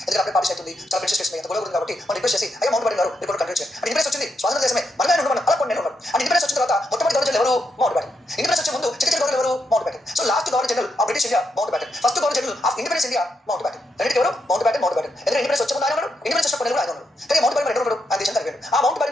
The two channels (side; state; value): both; normal; correlation 0.81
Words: ఎందుకంటే అప్పుడే పార్టీ అవుతుంది చాలా ప్రిన్సెస్ చేస్తుంది ఎంత గొడవ ఉంది కాబట్టి మనం రిక్వెస్ట్ చేసి అయ్యా మౌంట్ బ్యాటన్ గారు ఇప్పుడు కంటిన్యూ చేయాలి అండ్ ఇండిపెండెన్స్ వచ్చింది స్వాతంత్ర దేశమే మనమే ఉన్నాడు అలా కొన్ని ఉన్నాడు అండ్ ఇండిపెండెన్స్ వచ్చిన తర్వాత మొట్టమొదటి గవర్నర్ ఎవరు మౌంట్ బ్యాటన్ ఇండిపెండెన్స్ వచ్చే ముందు చిన్న గవర్నర్ ఎవరు mount baton so last governor general of British India mount baton first governor general of independence India mount baton రెండింటి ఎవరు మౌంట్ బ్యాటన్ ఎందుకంటే ఇండిపెండెన్స్ వచ్చే ముందు ఆయన ఉన్నాడు ఇండిపెండెన్స్ వచ్చినప్పుడు ఆయన ఉన్నాడు కానీ మౌంట్ బ్యాటన్ ఎవరు ఆ దేశం జరిగాడు ఆ మౌంట్